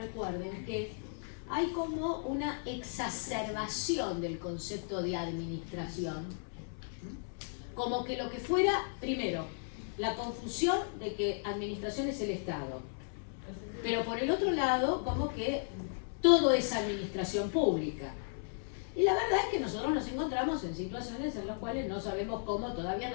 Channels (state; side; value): silent; right; 54 dB below the other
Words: que hay como una exacerbación del concepto de administración. Como que lo que fuera, primero, la confusión de que administración es el Estado. Pero por el otro lado, como que todo es administración pública. Y la verdad es que nosotros nos encontramos en situaciones en las cuales no sabemos cómo, todavía